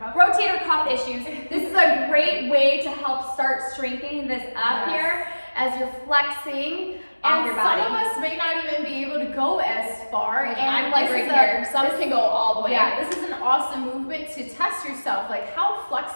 cuff issues. This is a great way to help start strengthening this up here as you're flexing off your body. Some of us may not even be able to go as far. And I'm like right here. Some can go all the way. Yeah, this is an awesome movement to test yourself. Like, how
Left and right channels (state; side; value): inverted; both; correlation -1.00